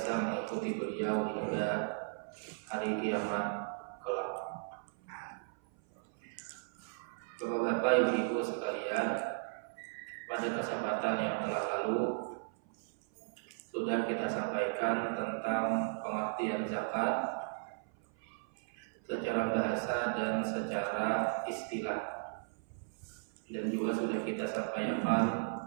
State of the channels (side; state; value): left; silent; 54 dB below the other